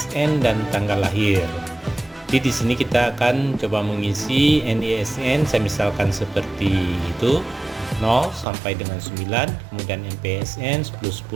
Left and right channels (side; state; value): left; drops out; at 8.5 s